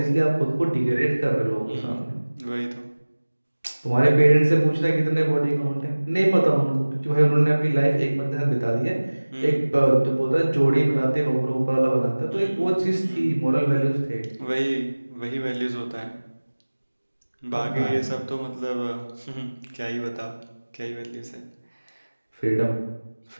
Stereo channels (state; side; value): inverted; both; correlation -1.00